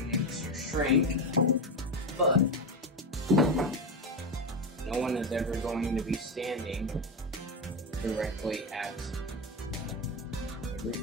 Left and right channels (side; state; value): both; normal; correlation 0.14